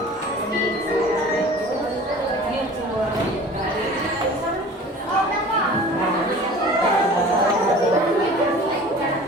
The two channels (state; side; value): normal; both; correlation 0.43